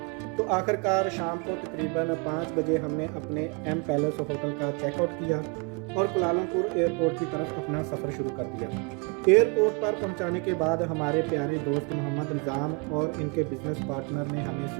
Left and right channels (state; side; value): quieter; left; 31.8 dB